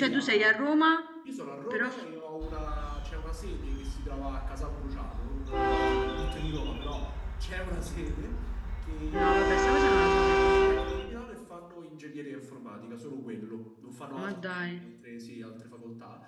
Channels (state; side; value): identical; both; correlation 1.00